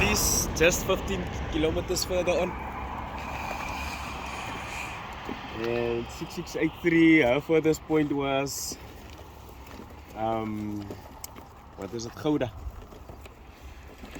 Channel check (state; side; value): identical; both; correlation 1.00